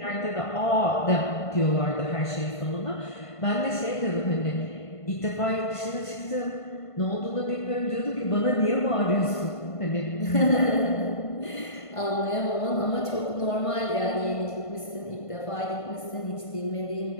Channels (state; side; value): late; right; 1.5 ms